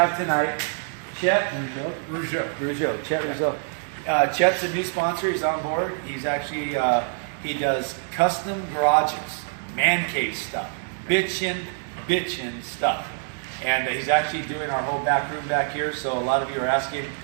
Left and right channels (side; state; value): left; silent; 62 dB below the other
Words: tonight Chet Rougeau. Chet Rougeau. Chet's a new sponsor. He's on board. He's actually he does custom garages, man cave stuff, bitchin' stuff. And he's actually doing our whole back room back here. So a lot of you are asking